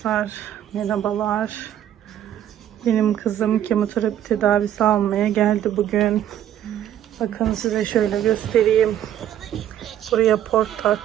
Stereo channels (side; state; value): left; quieter; 11.1 dB